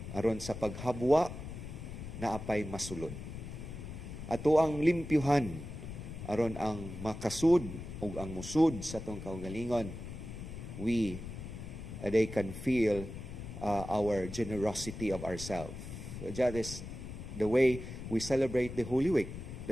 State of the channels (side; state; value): left; noise; rumble, 9 dB below the sound